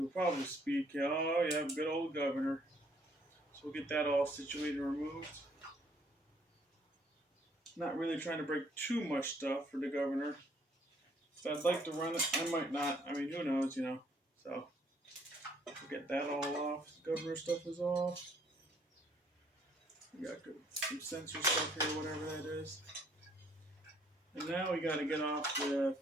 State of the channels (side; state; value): both; normal; correlation 0.64